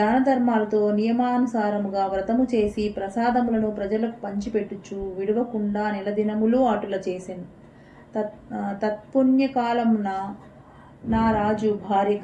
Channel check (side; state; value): both; identical; correlation 1.00